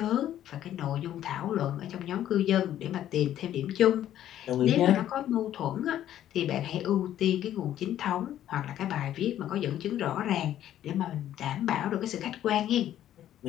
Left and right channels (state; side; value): quieter; right; 11.8 dB